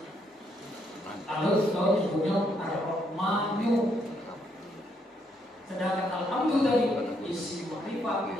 satunya Ar-Rahmanu. Sedangkan Alhamdulillah tadi isim ma'rifah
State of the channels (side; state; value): both; normal; correlation 0.74